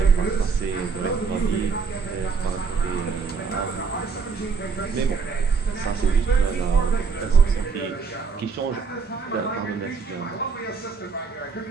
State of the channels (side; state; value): left; quieter; 5.2 dB